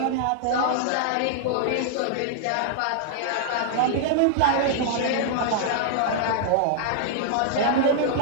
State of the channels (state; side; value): different; both; correlation -0.01